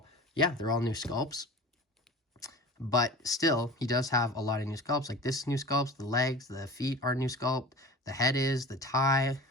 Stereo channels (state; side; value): normal; both; correlation 0.38